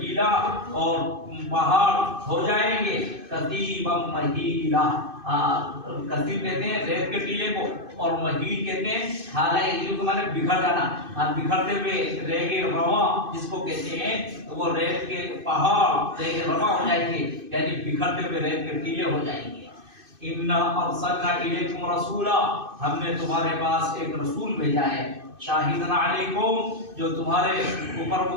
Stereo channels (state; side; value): late; left; 2.5 ms